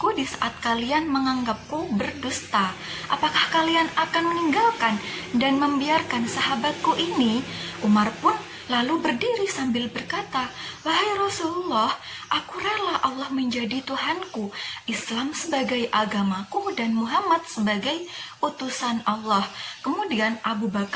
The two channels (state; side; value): identical; both; correlation 1.00